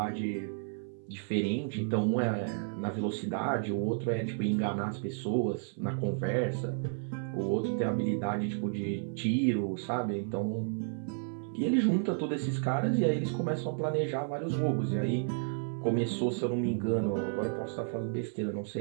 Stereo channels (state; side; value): silent; left; 56 dB below the other